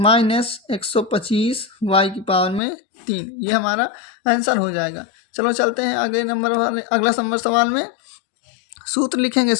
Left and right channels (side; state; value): right; drops out; at 2.6 s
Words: 125 y की पावर में 3, ये हमारा आंसर हो जाएगा। चलो चलते हैं अगले नंबर वाले, अगला नंबर सवाल में सूत्र लिखेंगे।